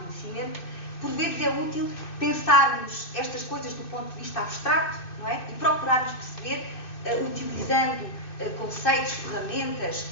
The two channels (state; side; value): late; right; 2.6 ms